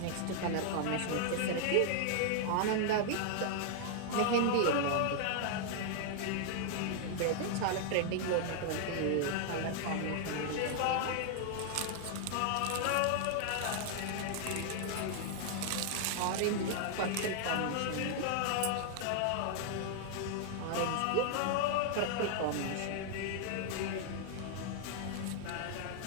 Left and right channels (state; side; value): different; both; correlation 0.00